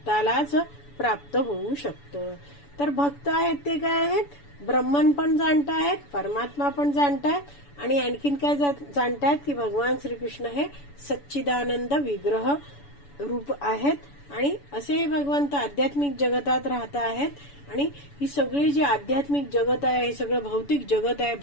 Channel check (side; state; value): right; late; 7.0 ms